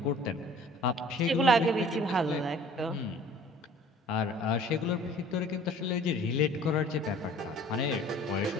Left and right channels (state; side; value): normal; both; correlation 0.51